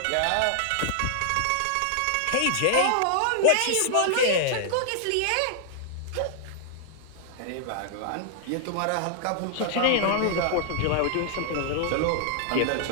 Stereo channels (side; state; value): both; different; correlation -0.01